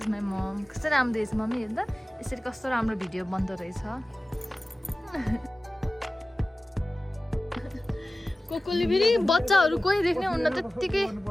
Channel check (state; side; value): normal; both; correlation 0.96